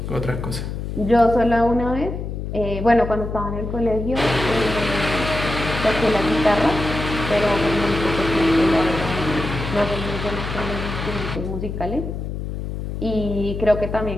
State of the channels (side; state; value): left; noise; hum, 5 dB below the sound